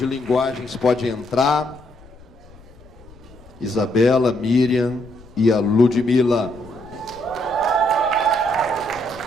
linguagens pode entrar. Isabela, Miriam e a Ludmila.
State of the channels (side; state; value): left; noise; rumble, 23 dB below the sound